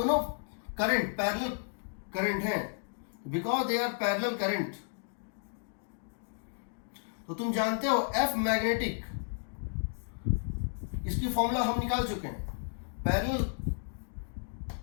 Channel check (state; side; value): silent; right; digital silence